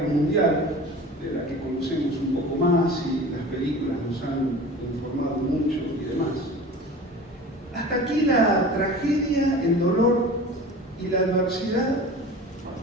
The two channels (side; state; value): both; normal; correlation 0.38